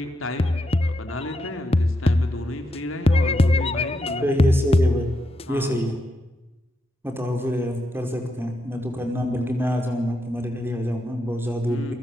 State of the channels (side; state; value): both; normal; correlation 0.83